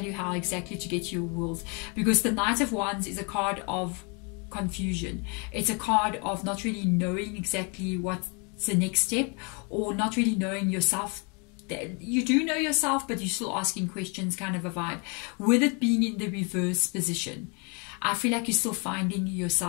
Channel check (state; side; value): quieter; right; 33.7 dB